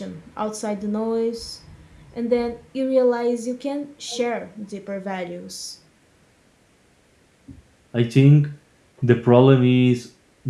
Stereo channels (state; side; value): identical; both; correlation 1.00